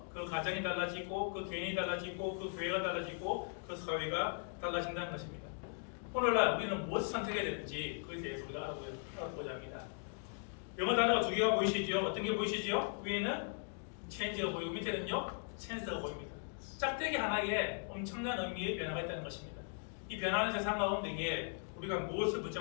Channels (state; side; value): silent; right; 52 dB below the other